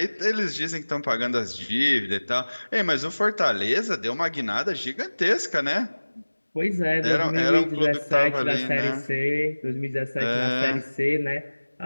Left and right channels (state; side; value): inverted; both; correlation -1.00